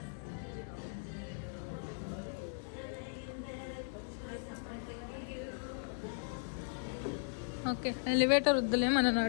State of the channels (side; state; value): right; silent; digital silence